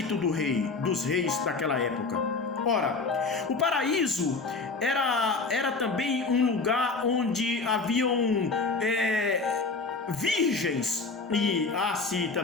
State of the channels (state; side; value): quieter; right; 4.0 dB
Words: do rei, dos reis daquela época. Ora, o paraíso era também um lugar onde haviam virgens, e há-se